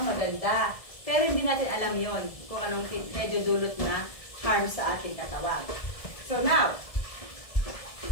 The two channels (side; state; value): right; late; 1.7 ms